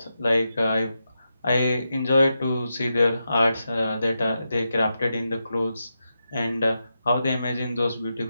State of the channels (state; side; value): inverted; both; correlation -0.87